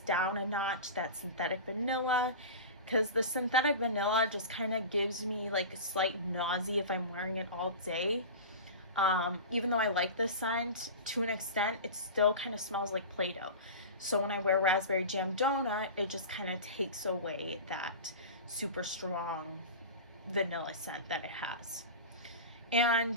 a notch that synthetic vanilla, because the synthetic vanilla just kind of gives me like a slight nausea if I'm wearing it all day. Even though I like this scent to an extent, it still kind of smells like Play-Doh. So when I wear Raspberry Jam Donut, it just kind of takes away that super strong vanilla scent that it has.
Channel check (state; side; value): inverted; both; correlation -0.30